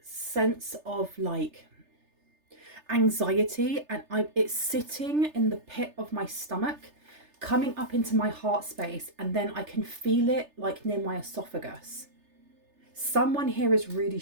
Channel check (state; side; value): late; left; 3.3 ms